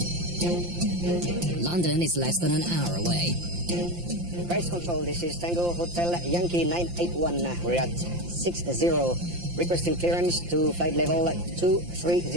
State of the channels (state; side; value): late; left; 5.8 ms